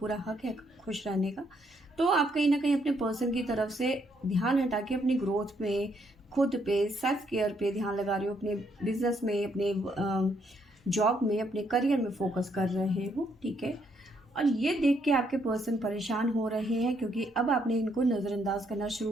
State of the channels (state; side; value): normal; both; correlation 0.73